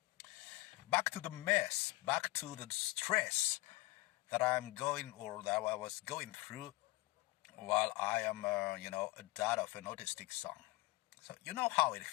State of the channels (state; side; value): quieter; right; 21.0 dB